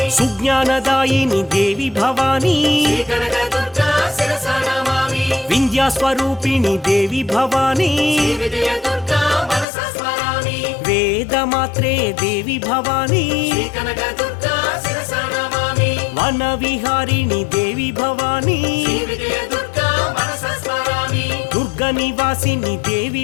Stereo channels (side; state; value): right; drops out; at 9.7 s